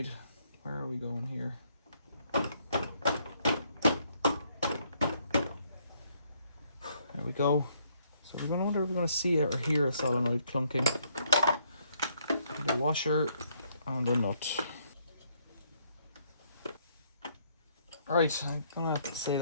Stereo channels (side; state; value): both; inverted; correlation -0.69